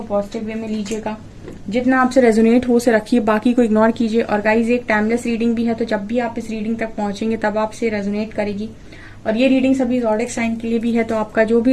पॉजिटिव वे में लीजिएगा। जितना आपसे रेजोनेट हो उसे रखिए, बाकी को इग्नोर कीजिए। और गाइस, एक टाइमलेस रीडिंग भी है, तो जब भी आप इस रीडिंग तक पहुंचेंगे तब आपसे रेजोनेट करेगी। और ये रीडिंग सभी ज़ोडिक साइन के लिए भी है, तो आपका जो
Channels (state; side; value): identical; both; correlation 1.00